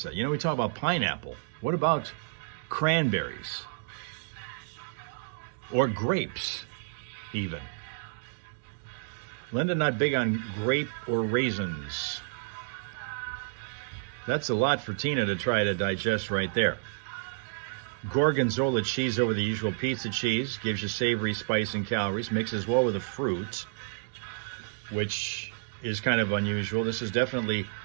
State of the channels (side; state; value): left; silent; digital silence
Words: You know, we talk about pineapple. What about cranberries? Or grapes, even. Linda, not big on grape or raisins. That's a lot for Tina to try to digest right there. Gorgonzola cheese over the usual pizza cheese. Gives you savory, spice, and calories. Mixes well with the fruit, which is kind of unusual. This is definitely